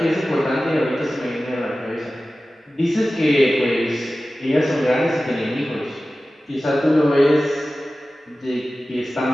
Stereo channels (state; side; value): normal; both; correlation 0.95